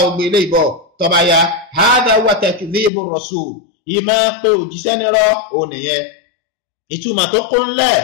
ogbe ilé ìbọ̀ tọba ya hadha wa takdhibu rasul ìmá pé òjíṣẹ́ nírọ́ ò nìyẹn ìtumọ̀ tó kún lẹ̀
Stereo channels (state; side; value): drops out; right; at 2.9 s